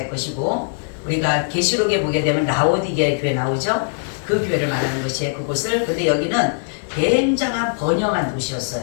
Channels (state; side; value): silent; right; digital silence